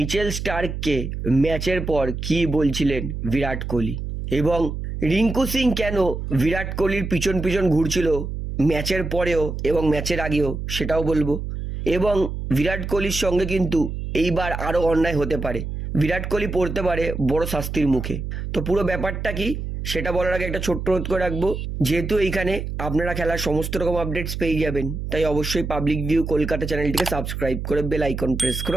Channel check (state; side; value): noise; right; hum, 5 dB below the sound